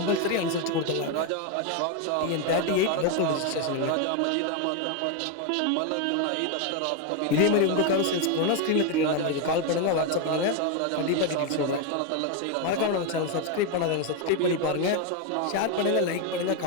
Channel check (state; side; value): different; both; correlation 0.02